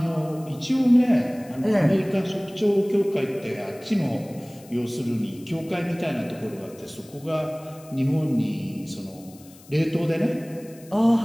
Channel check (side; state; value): left; noise; hiss, 24 dB below the sound